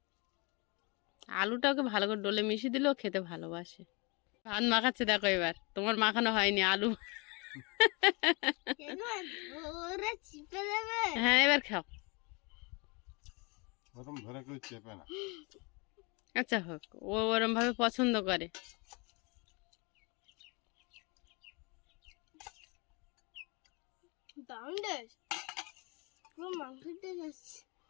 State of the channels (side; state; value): right; quieter; 29.4 dB